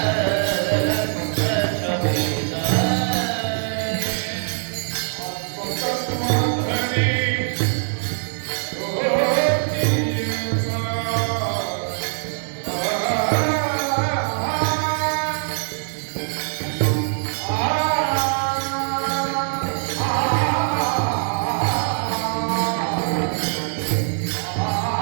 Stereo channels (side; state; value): left; silent; digital silence